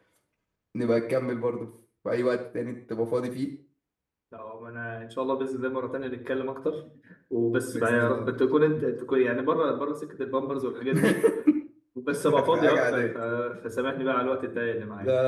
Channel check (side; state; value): both; identical; correlation 1.00